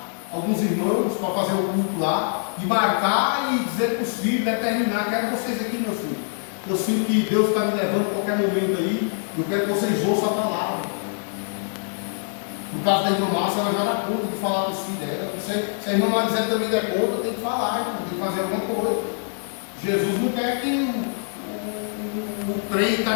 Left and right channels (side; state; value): right; silent; digital silence